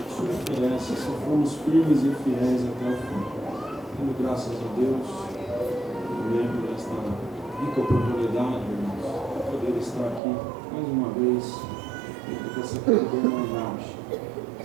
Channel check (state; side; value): drops out; left; at 10.2 s